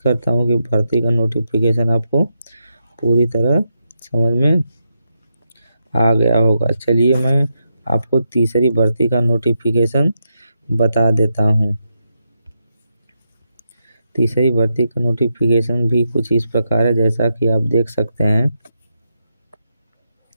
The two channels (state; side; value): inverted; both; correlation -0.84